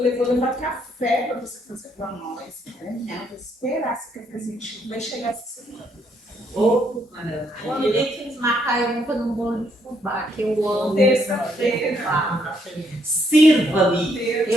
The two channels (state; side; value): normal; both; correlation 0.72